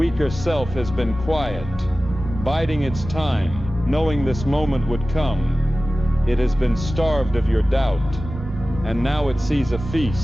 self has been quiet, biding its time, knowing this moment would come. It has been starved of your doubt, and now it sees a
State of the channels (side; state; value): both; normal; correlation 0.96